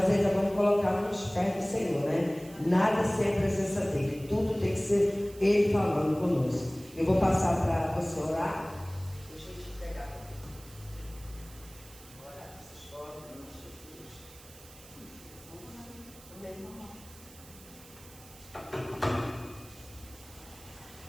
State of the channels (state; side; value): noise; right; hiss, 20 dB below the sound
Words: ainda vamos colocar nos pés do Senhor, né? Nada sem a presença dele, tudo tem que ser Ele falando conosco. Eu vou passar para você orar. Deixa eu te pegar. Orar essas fotos, em nome de Jesus. Amém.